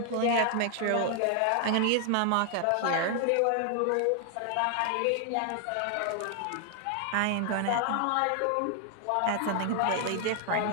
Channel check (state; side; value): different; both; correlation 0.00